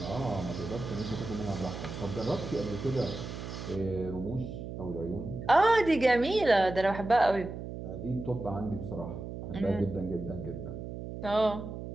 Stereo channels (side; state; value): right; noise; hum, 8 dB below the sound